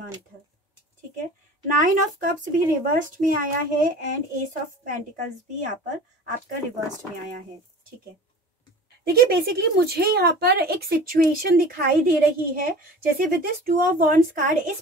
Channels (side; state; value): both; normal; correlation 0.40